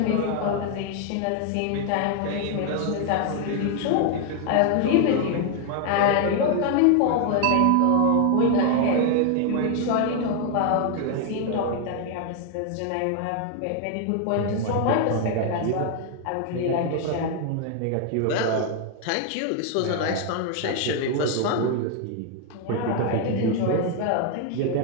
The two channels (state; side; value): different; both; correlation 0.00